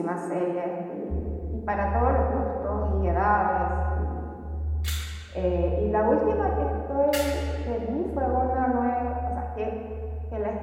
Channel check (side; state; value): both; identical; correlation 1.00